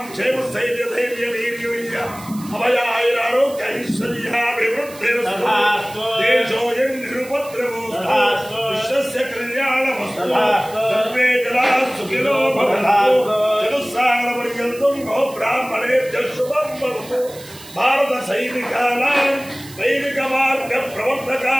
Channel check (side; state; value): right; noise; hiss, 18 dB below the sound